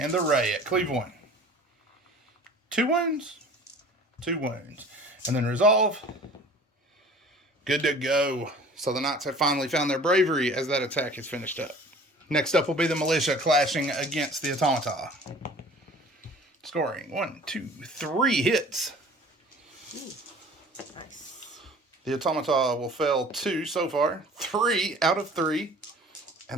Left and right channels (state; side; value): normal; both; correlation 0.47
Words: the Ray at Cleve 1. 2 wounds. 2 wounds. And then Resolve. Good to go. So the Knights have finally found their bravery as that attack is finished up. Next up will be the Militia clashing against the Automata. Scoring 1, 2, 3 hits. Nice. The Automata will fail 2 so far. 3 out of 3.